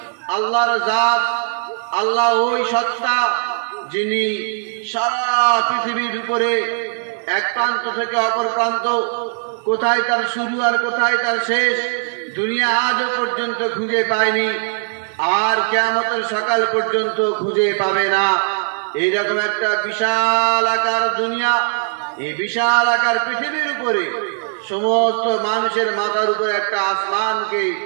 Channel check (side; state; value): left; silent; digital silence